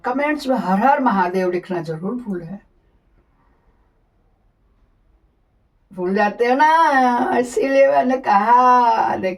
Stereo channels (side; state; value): both; identical; correlation 1.00